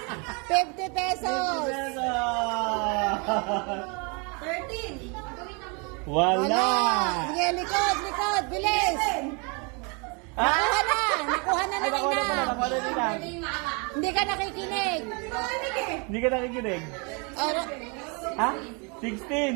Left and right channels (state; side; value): quieter; left; 33.0 dB